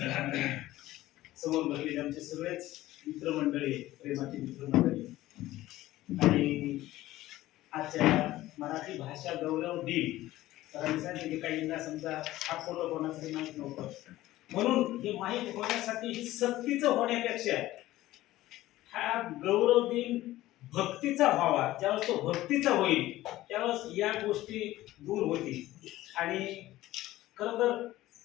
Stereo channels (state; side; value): quieter; right; 16.0 dB